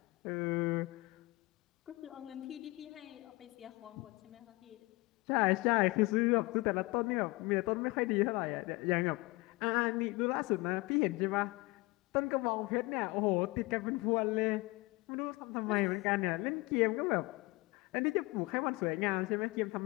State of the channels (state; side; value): quieter; right; 23.4 dB